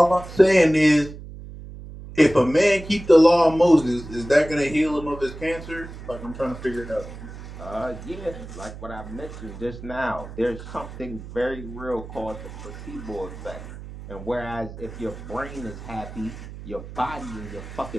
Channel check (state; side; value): noise; right; hum, 13 dB below the sound